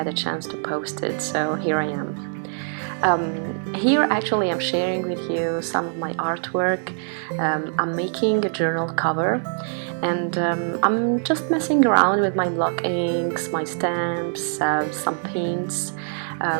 a chance to post it, so here I am. Here actually I'm sharing with you some of my artwork. I'm making a journal cover, and I'm just messing around with my block inks, my stamps, some paints,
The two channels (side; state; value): left; silent; 63 dB below the other